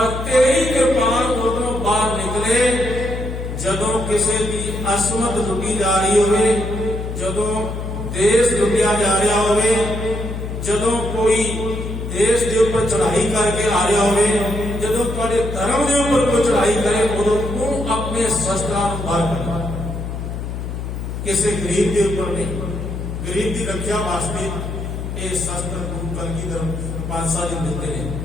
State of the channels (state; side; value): noise; left; hum, 6 dB below the sound